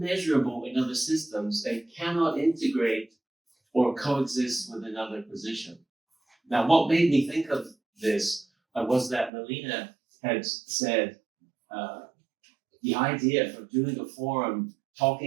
in other systems and cannot integrate or coexist with another position. Now, what made me think of this was that Melina had said the idea for doing a forum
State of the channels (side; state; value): left; drops out; at 9.3 s